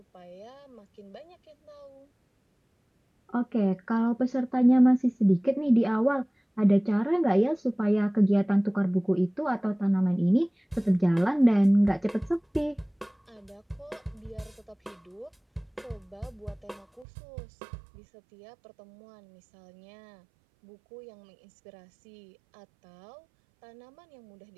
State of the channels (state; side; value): drops out; left; at 17.1 s